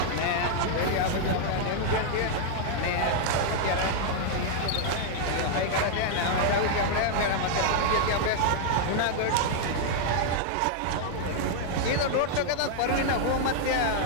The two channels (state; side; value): different; both; correlation -0.01